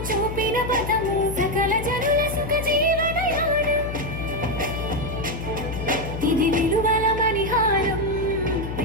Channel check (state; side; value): noise; left; hum, 7 dB below the sound